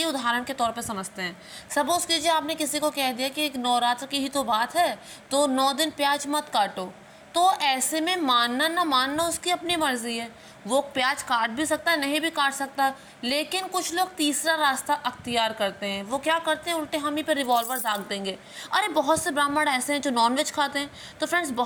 उदाहरण के तौर पे समझते हैं। सपोज़ कीजिए आपने किसी को कह दिया कि एक नवरात्र की ही तो बात है, तो 9 दिन प्याज मत काटो। तो ऐसे में मानना ना मानना उसकी अपनी मर्जी है। वो प्याज काट भी सकता है, नहीं भी काट सकता। लेकिन कुछ लोग तीसरा रास्ता अख्तियार करते हैं। वो क्या करते हैं, उल्टे हम ही पे रिवॉल्वर दाग देंगे। अरे बहुत से ब्राह्मण ऐसे हैं जो नॉनवेज खाते हैं। तो फ्रेंड्स,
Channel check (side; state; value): both; identical; correlation 1.00